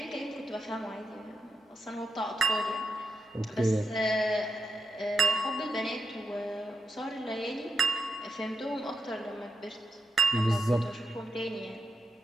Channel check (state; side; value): normal; both; correlation 0.85